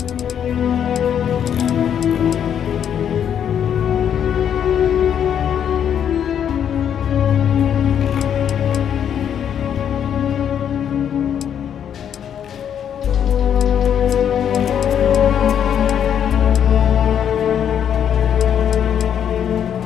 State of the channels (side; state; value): right; quieter; 8.9 dB